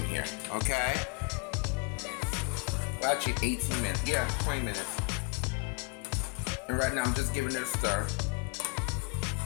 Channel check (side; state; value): right; quieter; 28.5 dB